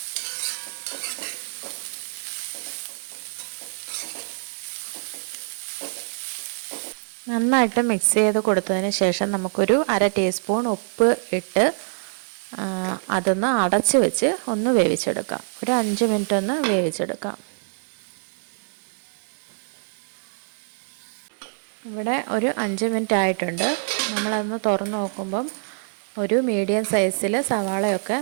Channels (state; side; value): silent; left; digital silence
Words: നന്നായിട്ട് മിക്സ് ചെയ്ത് കൊടുത്തതിന് ശേഷം നമുക്കൊരു 1/2 ടീസ്പൂൺ ഉപ്പ് ഇട്ട് അതൊന്ന് അടച്ച് വെച്ച് ഒന്ന് വേവിച്ചെടുക്കാം. ഒരു 5 മിനിറ്റ് ഒന്ന് വേവിച്ചെടുക്കാം. ഇവിടെ ഒരു 5 മിനിറ്റ് ആയിട്ടുണ്ട്. നമ്മളതൊന്ന് തുറന്ന് നോക്കുമ്പം ഒരു മീഡിയം സൈസിൽ സവാളയൊക്കെ